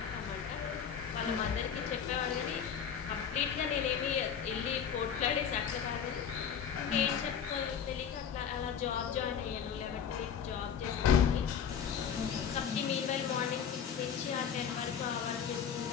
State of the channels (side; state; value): right; quieter; 7.7 dB